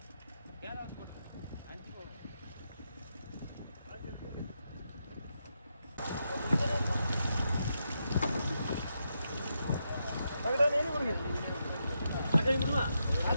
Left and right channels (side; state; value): both; inverted; correlation -0.83